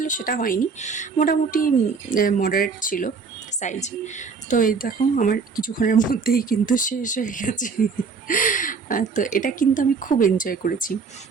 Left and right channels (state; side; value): quieter; left; 5.2 dB